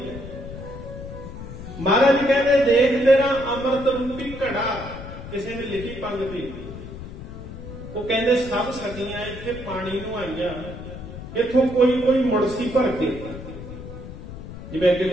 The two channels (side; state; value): left; noise; rumble, 11 dB below the sound